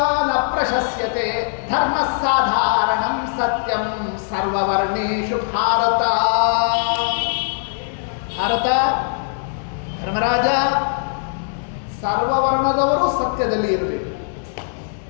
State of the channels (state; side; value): silent; right; digital silence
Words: ನ ಪ್ರಶಸ್ಯತೆ, ಧರ್ಮ ಸಾಧಾರಣಂ ಸತ್ಯಂ ಸರ್ವವರ್ಣೇಷು ಭಾರತ. ಭಾರತ, ಧರ್ಮರಾಜ, ಸರ್ವವರ್ಣದವರು ಸತ್ಯದಲ್ಲಿ ಇರಬೇಕು.